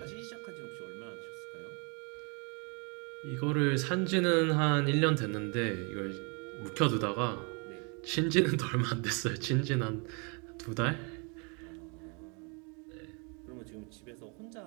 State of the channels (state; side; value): quieter; left; 33.9 dB